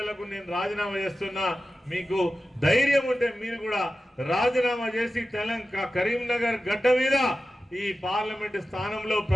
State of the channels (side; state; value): both; normal; correlation 0.94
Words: నేను రాజీనామా చేస్తున్నా, మీకు ధైర్యం ఉంటే మీరు కూడా రాజీనామా చేసి కరీంనగర్ గడ్డ మీద ఈ పార్లమెంట్ స్థానంలో